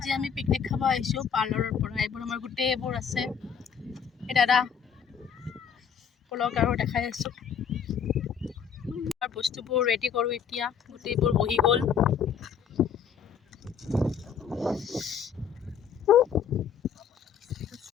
ami picnic khaba aisu parlor pora. Ebor amar gute ebor ase. E dada polok aro dekhai asu. Ar bostu bor ready koru etia. Gute ebor bohi gol.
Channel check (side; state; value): right; quieter; 7.4 dB